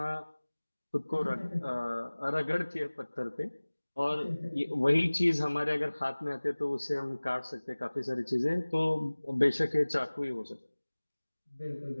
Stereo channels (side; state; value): both; inverted; correlation -1.00